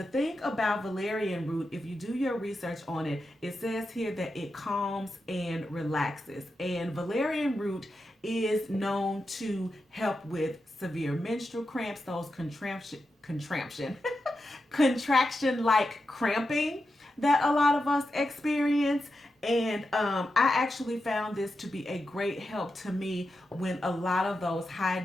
thing about Valerian Root, if you do your research on it, it says here that it calms and relaxes. And Valerian Root is known to help with severe menstrual cramps, those contraction-like cramping that a lot of us experience. And I actually found this to be a great help to me when a lot of those high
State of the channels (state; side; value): normal; both; correlation 0.89